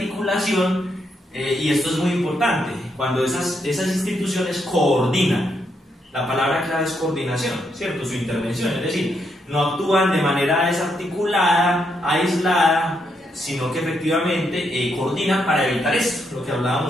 y esto es muy importante, cuando esas instituciones coordinan. La palabra clave es coordinación, ¿cierto? Su intervención, es decir, no actúan de manera desarticulada, aislada, sino que efectivamente coordinan para evitar esto, lo que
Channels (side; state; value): both; normal; correlation 0.78